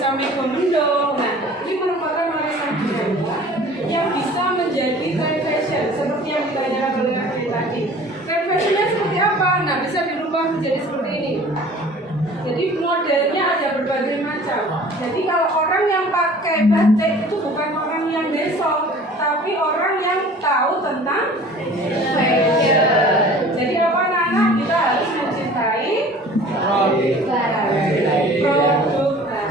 mego-mendung. Nah, ini merupakan warisan budaya yang bisa menjadi trend fashion seperti yang ditanyakan oleh Kak tadi. Trend fashionnya seperti apa? Nah, bisa dirubah menjadi seperti ini. Jadi modelnya ada berbagai macam. Jadi kalau orang yang pakai batik itu bukan orang yang besok, tapi orang yang tahu tentang fashion. Jadi apa anak-anak, kita harus mencintai produk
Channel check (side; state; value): both; normal; correlation 0.46